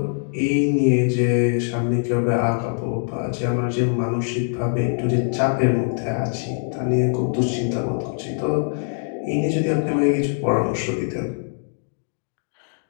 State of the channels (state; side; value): silent; right; digital silence